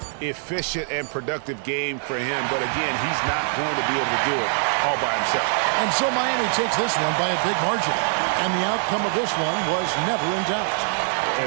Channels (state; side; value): silent; left; 63 dB below the other